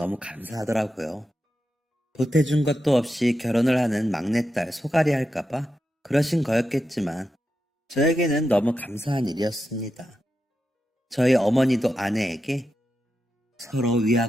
감사하더라고요. 보태준 것도 없이 결혼을 하는 막내딸 소갈이 할까봐 그러신 거였겠지만 저에게는 너무 감사한 일이었습니다. 저희 어머니도 아내에게 서로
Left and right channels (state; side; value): normal; both; correlation 0.88